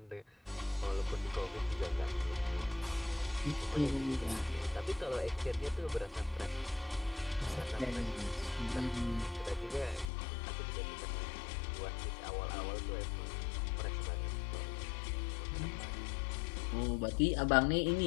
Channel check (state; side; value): drops out; right; at 10.1 s